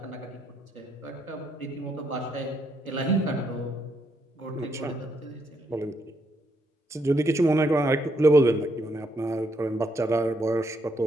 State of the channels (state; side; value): normal; both; correlation 0.76